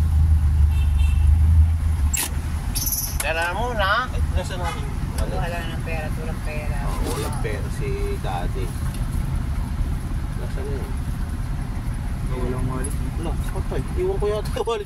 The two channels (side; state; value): both; identical; correlation 1.00